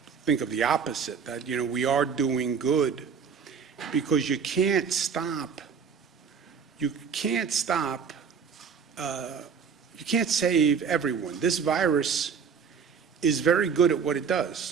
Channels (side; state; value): left; quieter; 6.5 dB